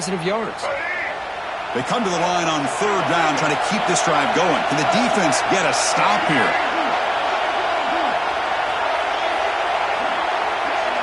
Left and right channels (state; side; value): identical; both; correlation 1.00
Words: yards. They come to the line on third down, trying to keep this drive going. Can the defense get a stop here?